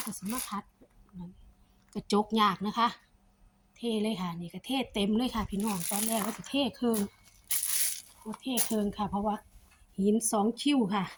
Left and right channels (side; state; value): both; identical; correlation 1.00